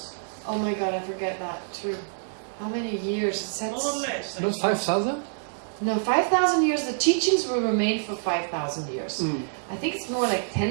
Oh my god, I forget that too. How many years? It says, More or less. Not 5,000? no, 5,000 years. The teachings will remain for 5,000 years. I think it's more like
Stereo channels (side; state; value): left; silent; digital silence